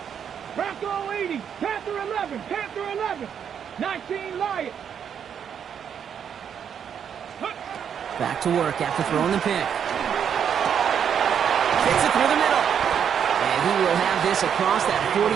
Bronco 80, Panther 11, Panther 11, 19 Lions. Back to work after throwing the pick. Gets it through the middle. And he will have this across that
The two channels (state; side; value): quieter; left; 8.1 dB